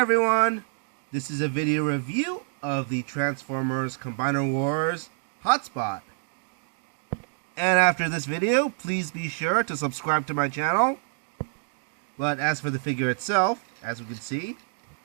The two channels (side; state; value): left; silent; digital silence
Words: This is a video review of the Transformers Combiner Wars Hotspot. And after this video, please be sure to subscribe to my channel. But as for the figure itself, as we can see,